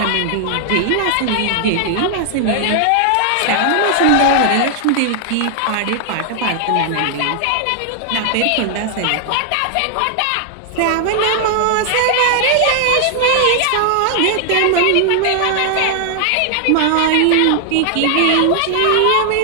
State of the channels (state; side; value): different; both; correlation 0.00